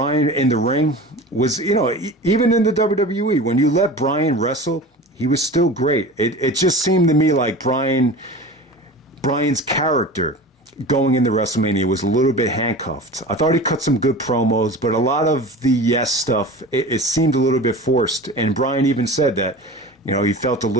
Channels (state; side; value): normal; both; correlation 0.35